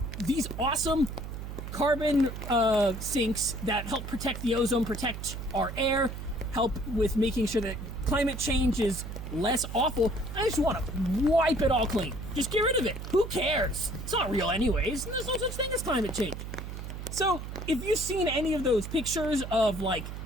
these awesome carbon sinks that help protect the ozone, protect our air, help with making sure that climate change is less awful. I just want to wipe it all clean. Just get rid of it. Who cares? It's not real anyways. There's no such thing as climate change. So if you've seen any of those pictures of like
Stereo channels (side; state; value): right; noise; hum, 8 dB below the sound